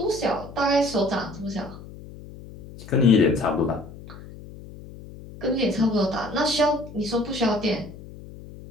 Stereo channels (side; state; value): left; noise; hum, 16 dB below the sound